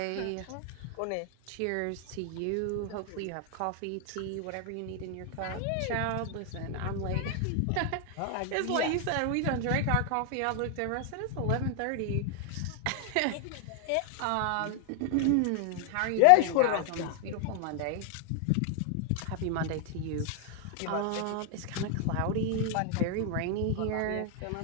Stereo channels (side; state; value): both; different; correlation 0.00